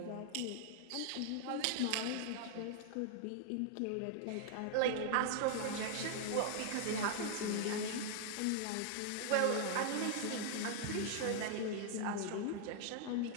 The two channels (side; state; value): both; different; correlation 0.00